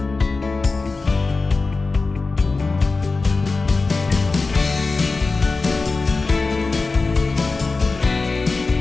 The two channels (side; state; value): right; quieter; 3.9 dB